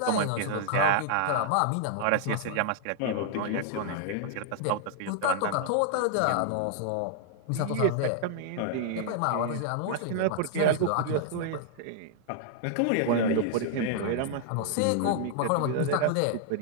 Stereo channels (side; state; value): both; different; correlation -0.01